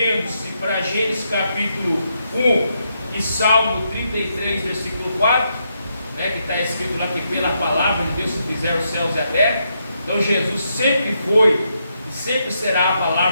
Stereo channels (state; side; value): inverted; both; correlation -0.80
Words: para Gênesis capítulo 1 e Salmo 33, versículo 4, né, que está escrito lá que pela palavra de Deus se fizeram os céus e a terra. Então Jesus sempre foi e sempre será a